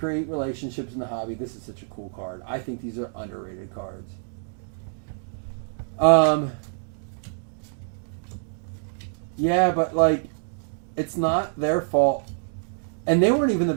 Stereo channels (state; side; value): silent; left; digital silence